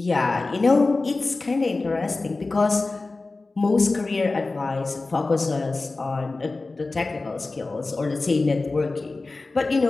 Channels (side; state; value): right; quieter; 3.5 dB